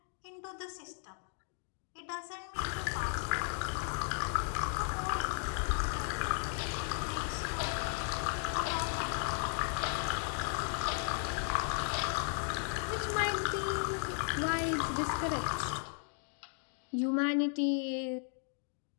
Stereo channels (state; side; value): silent; right; 54 dB below the other